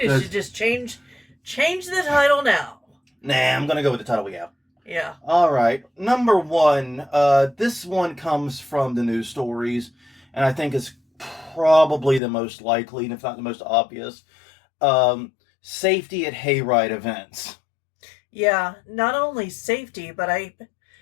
just change the title now. Nah, I'm gonna go with the title we have. Yeah. Alright, number 1. This one comes from the news stories, and I think it's probably the most likely, and if not the most obvious. Safety at hayride events. Yeah, not only safety, but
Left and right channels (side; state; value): right; drops out; at 12.2 s